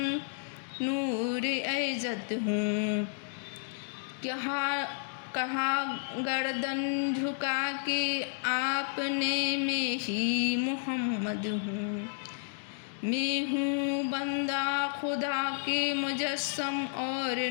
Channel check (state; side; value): silent; right; digital silence